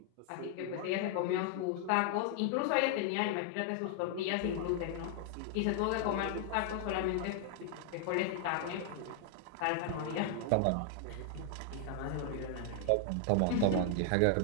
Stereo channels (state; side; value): different; both; correlation 0.00